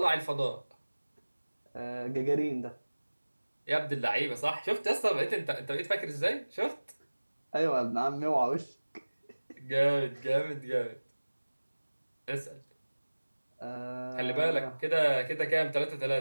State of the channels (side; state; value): both; inverted; correlation -1.00